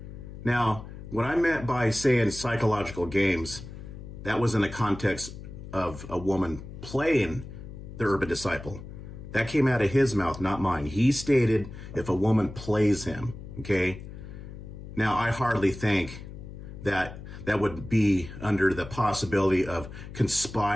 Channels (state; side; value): noise; left; hum, 12 dB below the sound